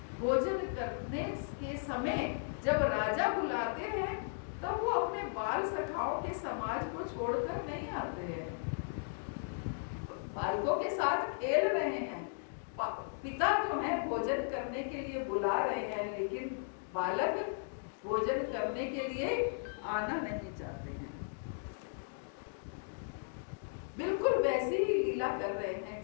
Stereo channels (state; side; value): silent; right; digital silence